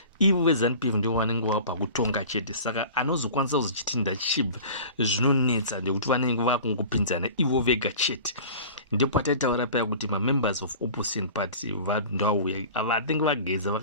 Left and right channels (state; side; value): inverted; both; correlation -0.40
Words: ivo veZANU-PF ndio vanenge vapa kutonga chete, saka anozokwanisa kuzochiti ndachibva zvinonetsa ndekuti vanenge vakungopinzana ivo vega chete. Ndipo pataitaura paya kuti mamembers of opposition party vandauya vatinge vageza